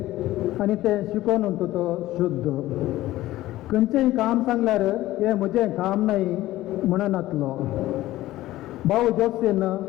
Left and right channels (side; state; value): right; quieter; 16.0 dB